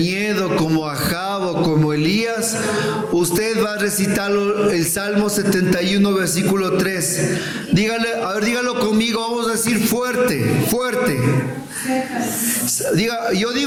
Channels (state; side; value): identical; both; correlation 1.00